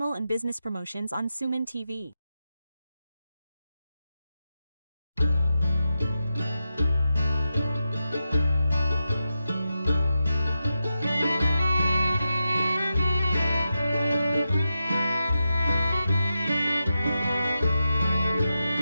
and business promotions on Suman TV.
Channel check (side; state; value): both; inverted; correlation -0.89